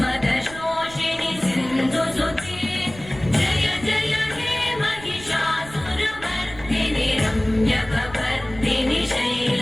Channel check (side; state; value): right; noise; rumble, 17 dB below the sound